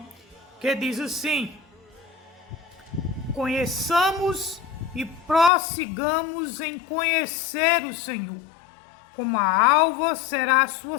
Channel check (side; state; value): right; drops out; at 5.5 s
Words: que diz assim: conheçamos e prossigamos em conhecer o Senhor. Como a alva será a sua